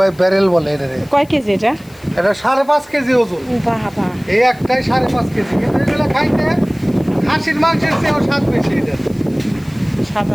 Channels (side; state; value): left; noise; hiss, 26 dB below the sound